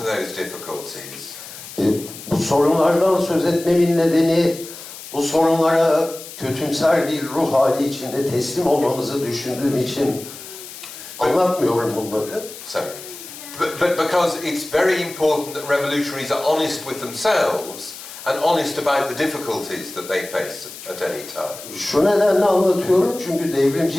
those difficulties. Bu sorunlardan söz etmemin nedeni bu sorunlara kötümser bir ruh hali içinde teslim olmamızı düşündüğüm için anlatmıyorum bunları. So, but because it's very important that revolutionaries are honest with themselves and honest about the difficulties that they face at any time. Şu nedenle anlatıyorum çünkü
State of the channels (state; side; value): noise; left; hiss, 14 dB below the sound